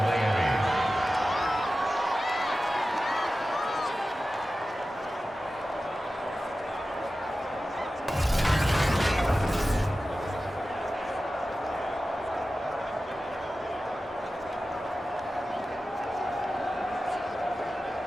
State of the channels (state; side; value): normal; both; correlation 0.94